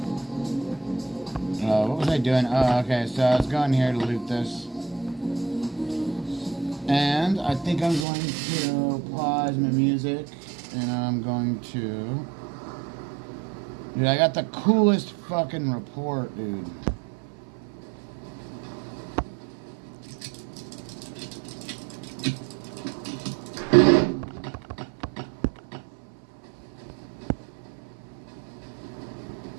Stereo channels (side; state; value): left; drops out; at 8.1 s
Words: What was I doing? Oh, okay, so I was going here to loot this. And I think I'm going to pause my music. And I'm going to... Dude, I got the coolest fucking report, dude.